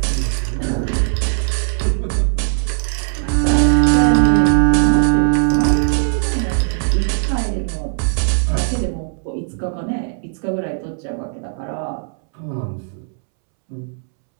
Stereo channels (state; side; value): silent; left; 67 dB below the other